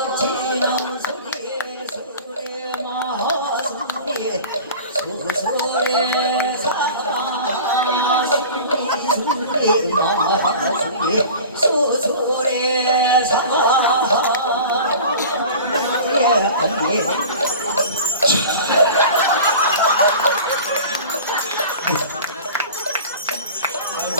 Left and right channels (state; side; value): inverted; both; correlation -0.38